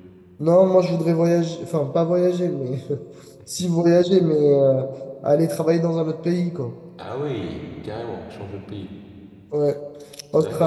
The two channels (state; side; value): identical; both; correlation 1.00